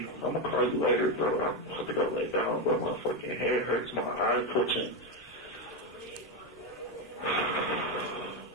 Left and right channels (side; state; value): both; normal; correlation 0.09